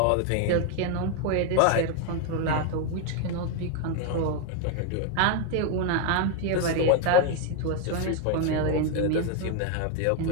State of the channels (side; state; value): both; different; correlation 0.01